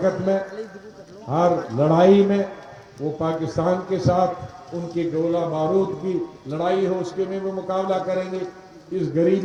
में, हर लड़ाई में। वो पाकिस्तान के साथ उनकी गोला बारूद की लड़ाई हो, उसके में वो मुकाबला करेंगे। इस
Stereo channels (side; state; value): both; identical; correlation 1.00